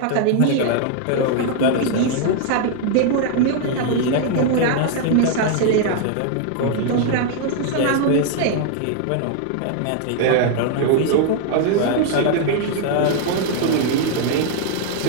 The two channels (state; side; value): different; both; correlation 0.00